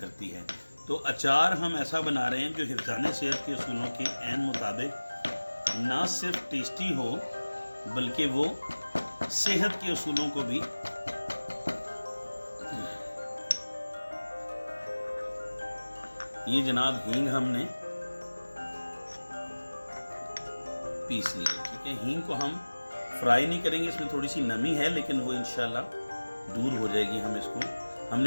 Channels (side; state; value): both; inverted; correlation -1.00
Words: है। तो अचार हम ऐसा बना रहे हैं जो हिफ्ज़ाने सेहत के उसूलों के ऐन मुताबिक ना सिर्फ टेस्टी हो बल्कि वो सेहत के उसूलों को भी ये जनाब हींग हमने पीस ली, ठीक है। हींग को हम फ्राई नहीं करेंगे, इसमें थोड़ी सी नमी है लेकिन वो इंशाल्लाह दूर हो जाएगी। हम इसको,